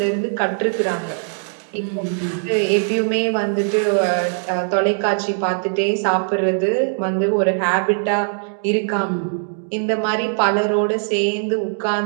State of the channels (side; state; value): left; silent; digital silence